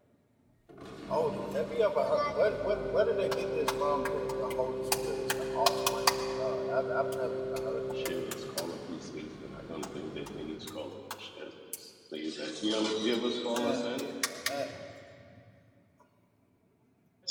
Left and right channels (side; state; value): both; identical; correlation 1.00